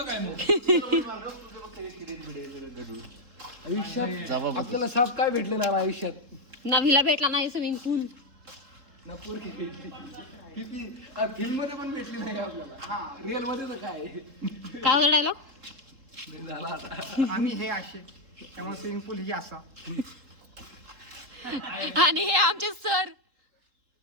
आयुष्यात आपल्याला साप काय भेटले ना आयुष्यात? नवीला भेटला नाही स्विमिंग पूल. ना पोरगी भेटली. फिल्म मध्ये पण भेटली नाही आपल्याला. रिअल मध्ये तर काय काय होता डायलॉग? झाला आता. आम्ही हे असे त्यामुळे स्विमिंग पूल ही असा. आणि हे आमचे सर.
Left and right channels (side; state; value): left; late; 3.8 ms